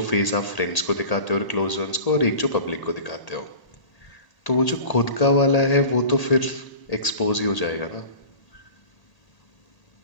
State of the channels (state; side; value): late; right; 1.8 ms